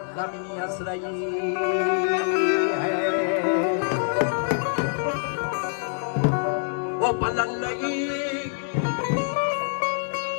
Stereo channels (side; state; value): right; silent; 62 dB below the other